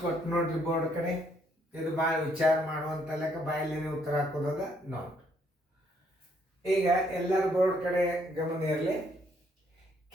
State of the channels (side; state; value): both; normal; correlation 0.69